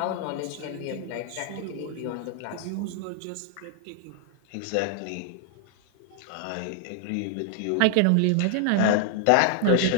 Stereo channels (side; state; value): both; different; correlation 0.00